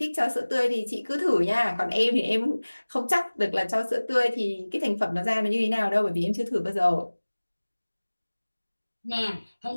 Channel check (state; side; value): inverted; both; correlation -1.00